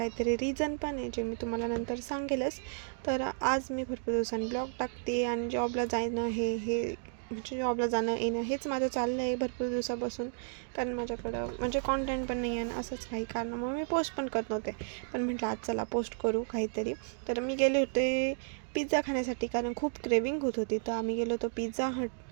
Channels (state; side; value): silent; left; digital silence